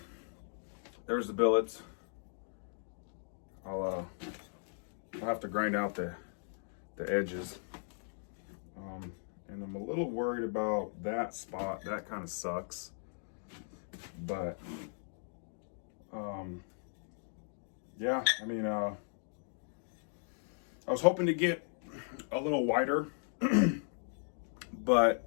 there's the billets. I'll have to grind out the edges, and I'm a little worried about that spot. That kind of sucks, but yeah, I mean, I was hoping to get a little wider, but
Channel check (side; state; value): right; silent; digital silence